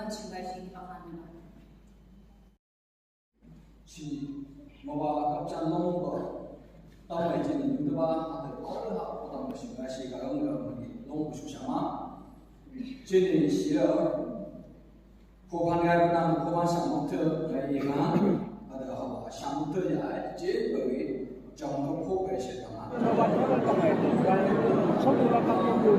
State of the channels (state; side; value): identical; both; correlation 1.00